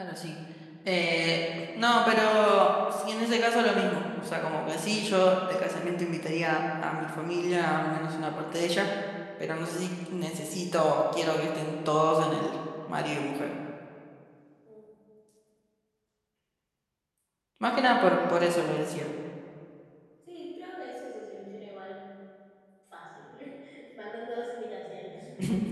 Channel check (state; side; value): identical; both; correlation 1.00